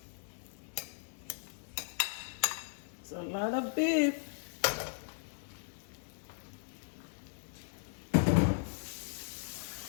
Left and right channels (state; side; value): silent; right; digital silence